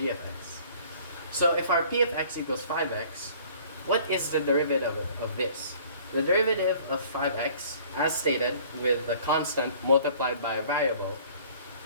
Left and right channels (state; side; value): inverted; both; correlation -0.52